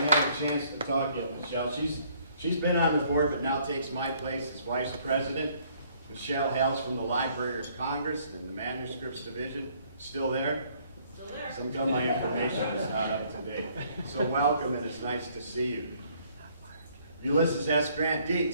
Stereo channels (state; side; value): inverted; both; correlation -0.63